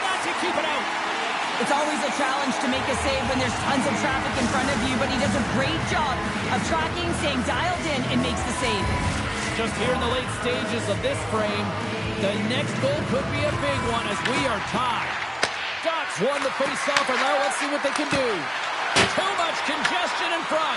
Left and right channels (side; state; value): both; identical; correlation 1.00